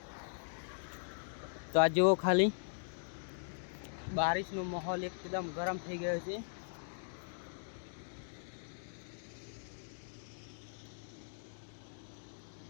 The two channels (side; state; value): right; silent; digital silence